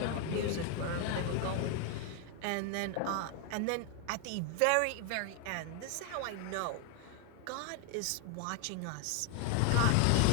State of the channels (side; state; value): both; different; correlation 0.00